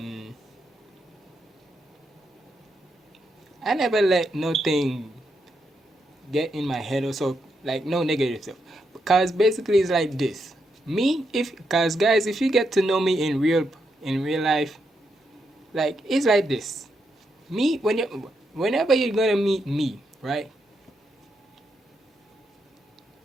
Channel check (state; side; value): normal; both; correlation 0.81